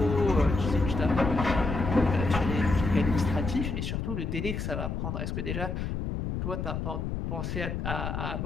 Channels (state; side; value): noise; left; rumble, 3 dB below the sound